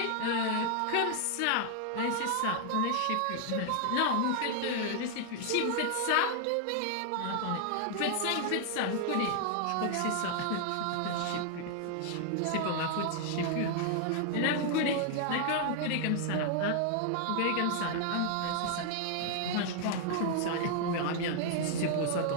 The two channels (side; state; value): both; different; correlation 0.00